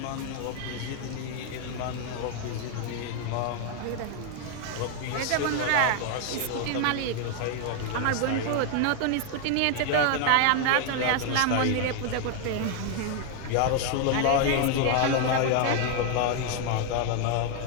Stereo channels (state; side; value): different; both; correlation 0.00